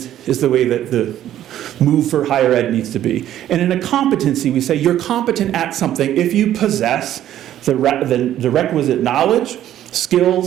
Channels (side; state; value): left; quieter; 12.0 dB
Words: is the way that the move for higher ed needs to be. And in a competency, we say you're competent at something if you possess the requisite knowledge,